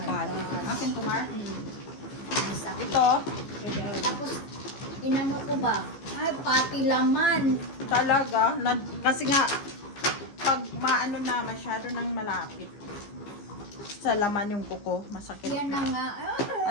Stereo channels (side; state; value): right; late; 15 ms